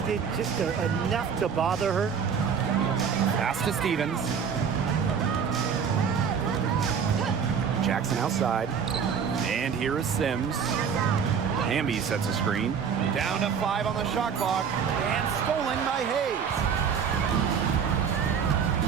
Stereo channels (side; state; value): left; quieter; 6.8 dB